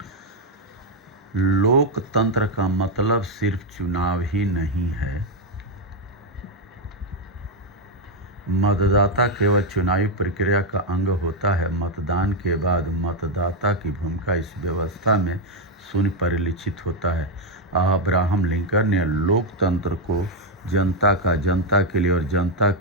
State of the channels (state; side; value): normal; both; correlation 0.03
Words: लोकतंत्र का मतलब सिर्फ चुनाव ही नहीं है। मतदाता केवल चुनावी प्रक्रिया का अंग होता है। मतदान के बाद मतदाता की भूमिका इस व्यवस्था में शून्य परिलक्षित होता है। अब्राहम लिंकन ने लोकतंत्र को जनता का जनता के लिए और जनता